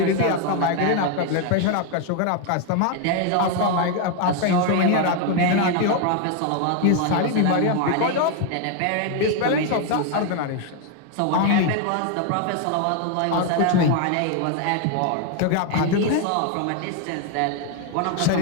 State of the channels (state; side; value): different; both; correlation 0.01